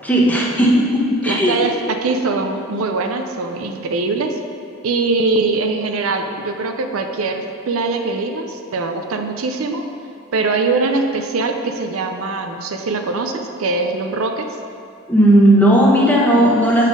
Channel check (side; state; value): both; normal; correlation 0.40